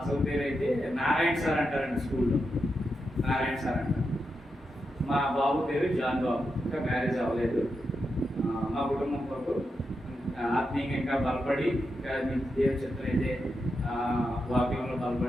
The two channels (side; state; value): both; normal; correlation 0.87